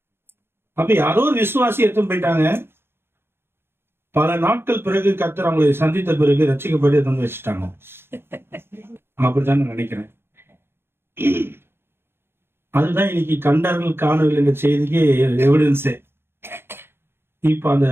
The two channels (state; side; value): late; left; 0.11 ms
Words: அப்ப யாரோ ஒரு விசுவாசி எடுத்து போயிட்டாங்க. பல நாட்கள் பிறகு கர்த்தர் அவங்களை சந்தித்த பிறகு ரட்சிக்கப்பட்டு எடுத்து வச்சுட்டாங்க. அப்படித்தான் நான் நினைக்கிறேன். அதுதான் இன்னைக்கு கண்டார்கள் காணவில்லை என்ற செய்திக்கு எவிடன்ஸே. இப்ப அந்த